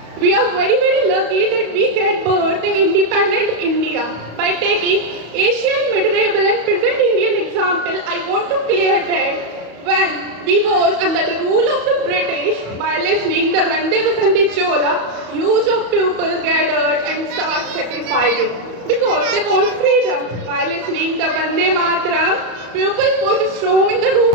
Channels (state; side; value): late; left; 34 ms